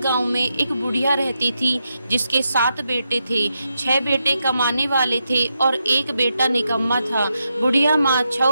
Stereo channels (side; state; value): both; inverted; correlation -0.85